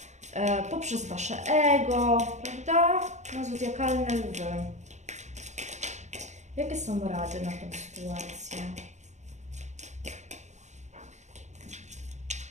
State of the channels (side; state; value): left; late; 0.34 ms